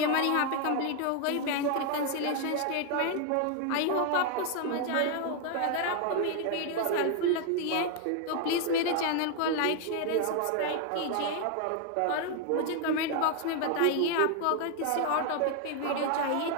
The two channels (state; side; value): different; both; correlation 0.00